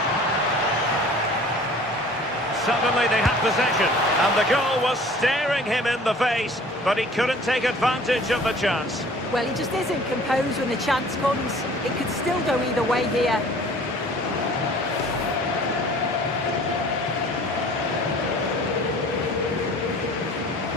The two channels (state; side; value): normal; both; correlation 0.49